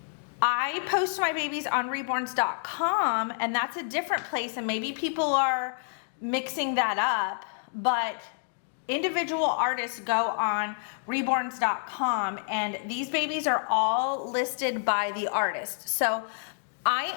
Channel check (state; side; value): silent; right; digital silence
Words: I post my babies on reborns.com, and that's a different place, and maybe people are mixing that up, but individual artists go on reborns.com, and these babies are all listed by the artist. So I